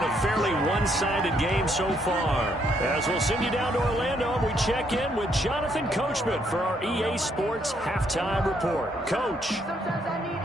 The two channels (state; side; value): normal; both; correlation 0.72